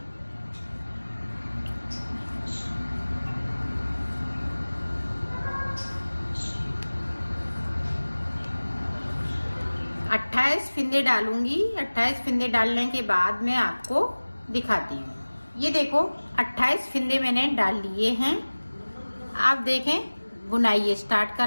अट्ठाईस फिंदे डालूंगी। 28 फिंदे डालने के बाद मैं आपको दिखाती हूँ। ये देखो, 28 फिंदे मैंने डाल लिए हैं। आप देखें, बुनाई स्टार्ट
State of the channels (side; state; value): both; inverted; correlation -1.00